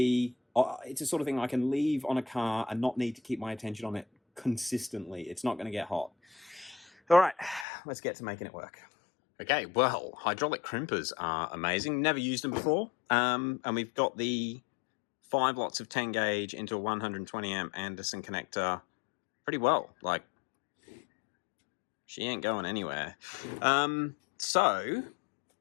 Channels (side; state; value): right; drops out; at 7.7 s